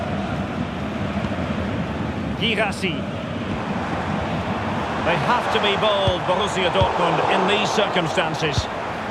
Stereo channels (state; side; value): identical; both; correlation 1.00